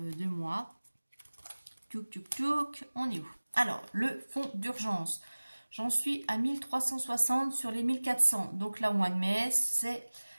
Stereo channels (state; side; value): inverted; both; correlation -1.00